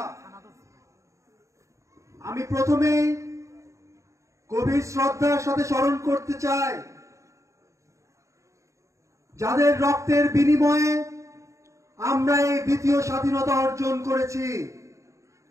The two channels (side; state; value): left; late; 0.15 ms